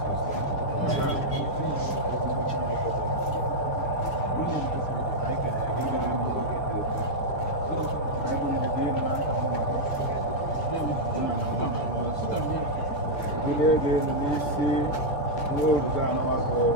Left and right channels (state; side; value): late; right; 4.4 ms